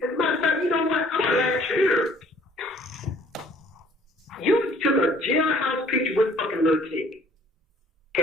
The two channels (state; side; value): normal; both; correlation 0.57